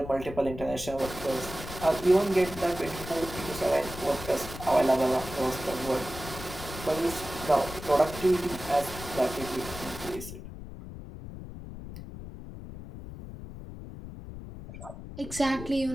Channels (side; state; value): left; noise; rumble, 11 dB below the sound